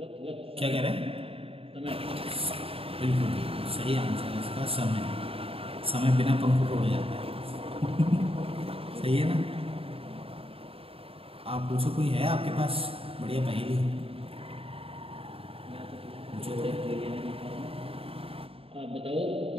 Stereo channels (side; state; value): left; late; 0.27 ms